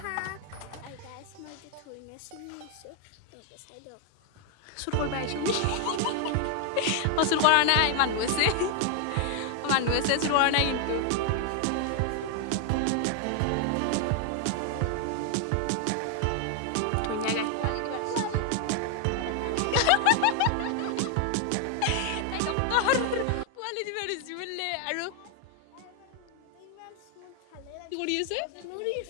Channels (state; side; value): different; both; correlation 0.00